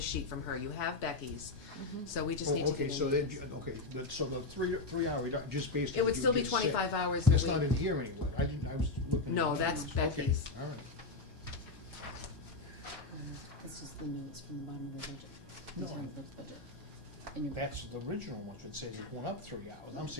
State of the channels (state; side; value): quieter; right; 3.3 dB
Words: sheet from her. You have Becky's, so we just Oh, need to okay, get so then, Anita's. okay, but so the 3 hour, just based on It what would you still be just said. 25 hours a That's not week. in here anywhere, I was looking. No, at the that's numbers. Becky's. Okay, all right. That's just the notes from the bottom of the budget, the No. town clerk's budget. And your, That's the original one, that says it's going up 3 hours. I'm